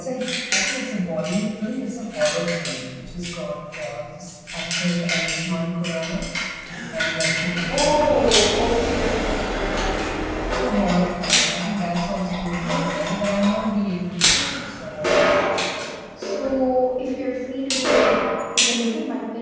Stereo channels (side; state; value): both; identical; correlation 1.00